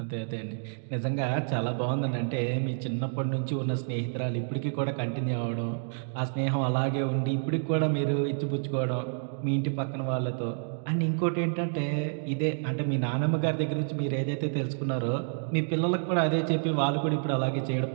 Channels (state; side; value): silent; left; digital silence